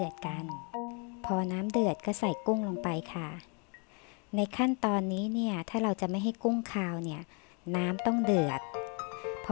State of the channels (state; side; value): quieter; right; 35.9 dB